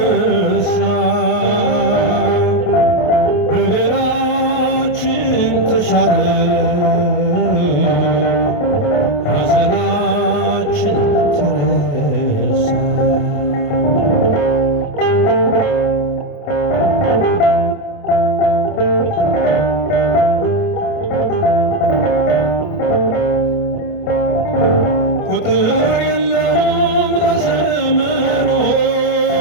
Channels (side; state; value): right; late; 28 ms